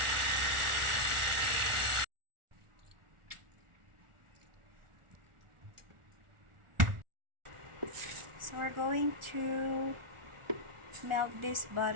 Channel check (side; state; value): left; late; 1.4 ms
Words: So we're going to melt this